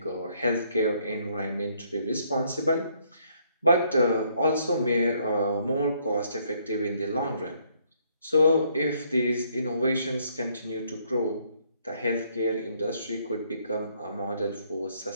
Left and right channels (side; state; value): both; inverted; correlation -0.68